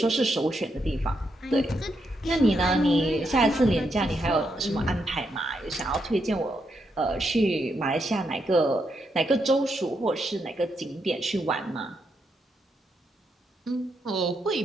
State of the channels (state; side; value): normal; both; correlation 0.80